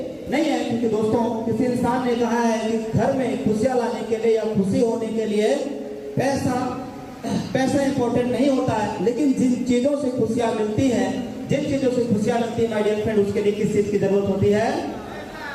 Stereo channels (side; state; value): both; identical; correlation 1.00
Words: नहीं है, क्योंकि दोस्तों किसी इंसान ने कहा है कि घर में खुशियां लाने के लिए या खुशी होने के लिए पैसा इंपॉर्टेंट नहीं होता है, लेकिन जिन चीजों से खुशियां मिलती है, जिन चीजों से खुशियां मिलती है माय डियर फ्रेंड, उसके लिए किस चीज की जरूरत होती है।